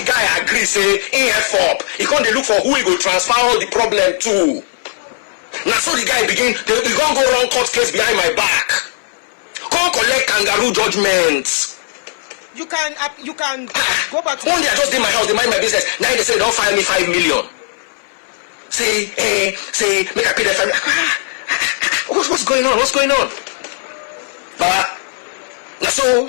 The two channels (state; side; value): silent; right; 60 dB below the other